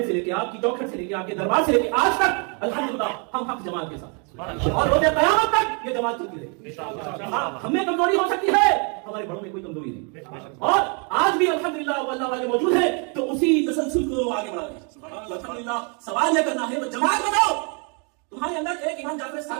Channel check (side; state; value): left; quieter; 36.1 dB